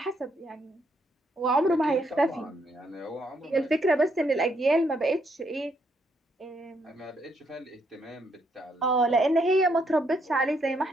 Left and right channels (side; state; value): both; normal; correlation 0.74